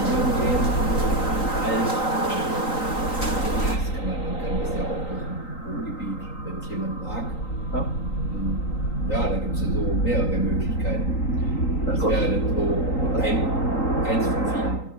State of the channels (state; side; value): late; right; 3.9 ms